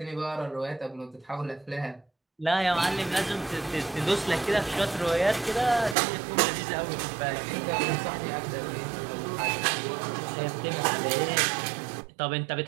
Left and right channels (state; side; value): drops out; left; at 6.0 s